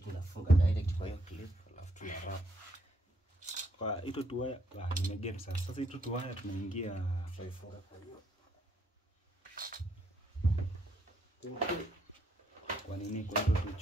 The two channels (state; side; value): normal; both; correlation 0.73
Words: direct kwa hiyo clip alafu tuna wrap. Kwa ito tuwaya nimegem sasa. Sasa ito tuwaya tunaingia Tutaifunga kwa hiyo. Kwa nini kwa hiyo